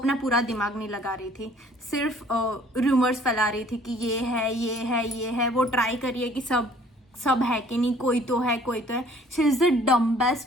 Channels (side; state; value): both; normal; correlation 0.56